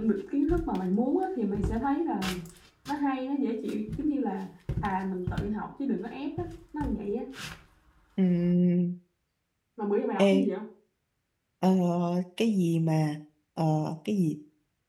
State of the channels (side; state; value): both; identical; correlation 1.00